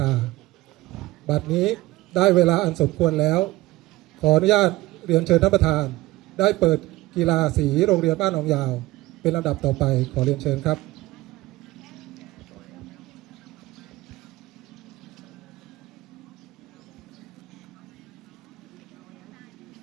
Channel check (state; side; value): quieter; left; 18.4 dB